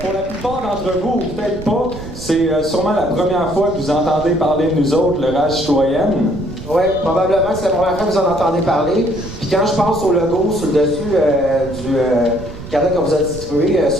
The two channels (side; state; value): right; noise; rumble, 13 dB below the sound